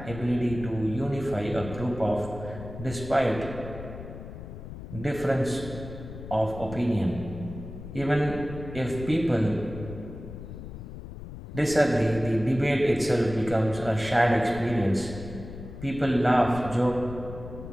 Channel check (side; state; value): left; noise; rumble, 11 dB below the sound